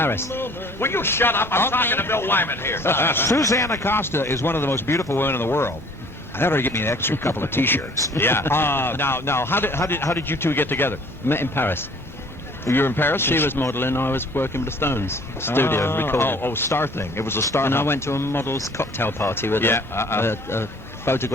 Will you shut up? I'm Okay. talking to Bill Wyman here. Susanna Acosta is one of the most beautiful women in the world. I thought her to get me an extra couple of T-shirts. Yeah. Now, how did you two get together? Met in Paris. You were in Paris. She was modelling. I was working with the Stones. Studio, recording. Oh, star thing. It was a star. And I hunt. went to a model's cocktail party with Yeah, a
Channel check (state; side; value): normal; both; correlation 0.54